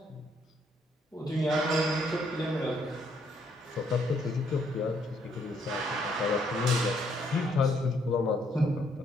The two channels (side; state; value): both; normal; correlation 0.70